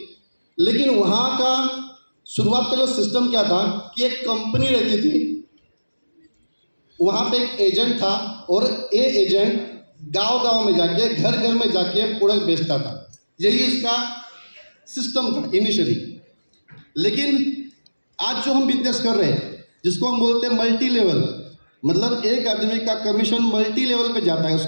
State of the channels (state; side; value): inverted; both; correlation -1.00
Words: लेकिन वहाँ का शुरुआत का जो सिस्टम क्या था कि एक कंपनी रहती थी, वहाँ पे एक एजेंट था और ये एजेंट गांव-गांव में जाके, घर-घर में जाके प्रोडक्ट बेचता था। यही इसका सिस्टम था इनिशियली। लेकिन आज जो हम बिजनेस कर रहे हैं, जिसको हम बोलते हैं मल्टी लेवल, मतलब एक आदमी का कमीशन मल्टी लेवल पे जाता है,